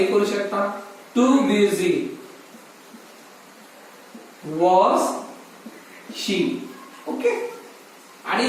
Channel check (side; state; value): both; identical; correlation 1.00